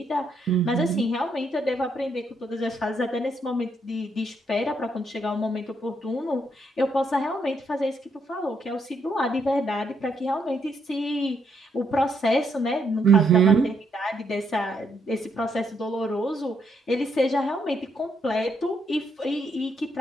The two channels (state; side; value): normal; both; correlation 0.75